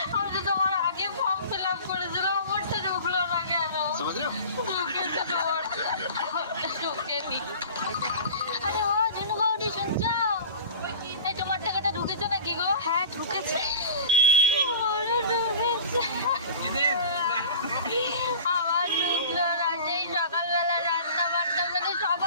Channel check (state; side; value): inverted; both; correlation -0.38